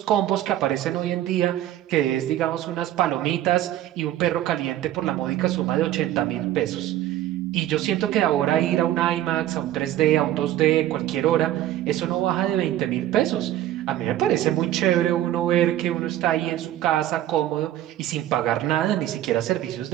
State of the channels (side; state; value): left; quieter; 13.1 dB